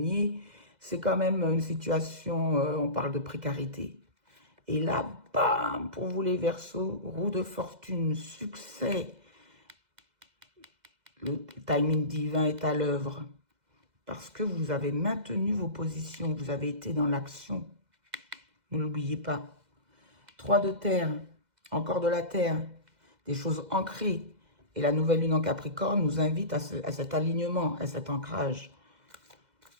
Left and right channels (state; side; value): late; left; 2.0 ms